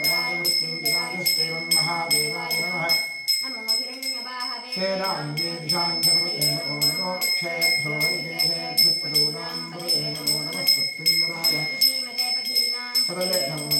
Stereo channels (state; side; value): identical; both; correlation 1.00